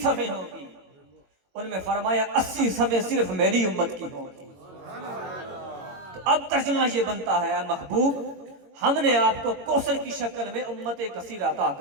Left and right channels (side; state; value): left; late; 22 ms